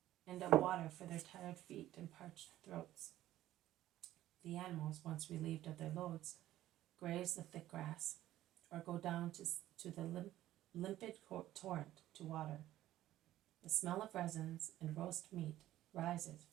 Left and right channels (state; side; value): quieter; left; 14.1 dB